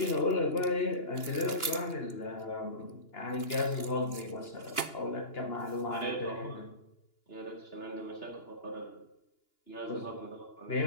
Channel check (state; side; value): late; right; 2.9 ms